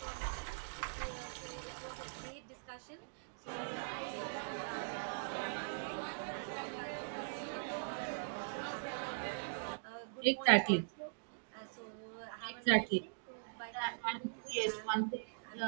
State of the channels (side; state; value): left; silent; digital silence